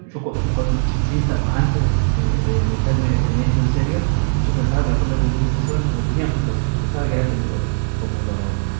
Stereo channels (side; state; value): left; silent; digital silence